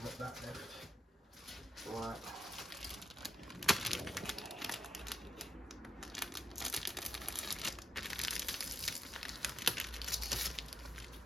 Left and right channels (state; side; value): normal; both; correlation 0.79